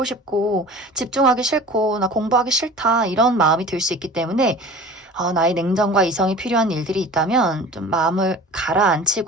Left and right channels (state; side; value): normal; both; correlation 0.40